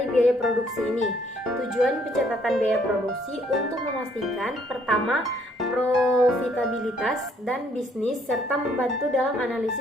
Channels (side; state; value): both; normal; correlation 0.65